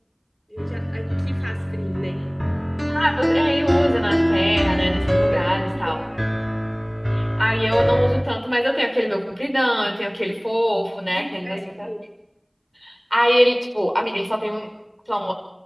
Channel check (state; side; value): identical; both; correlation 1.00